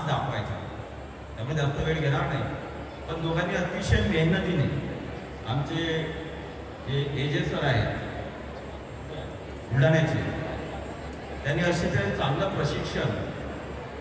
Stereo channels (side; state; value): both; identical; correlation 1.00